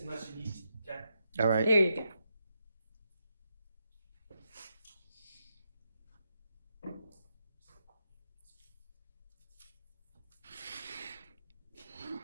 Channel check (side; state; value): both; inverted; correlation -0.84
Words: you need to. Okay? All right. there you go.